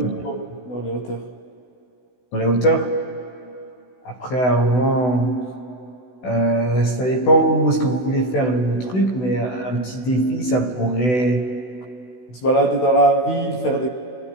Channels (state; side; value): late; right; 16 ms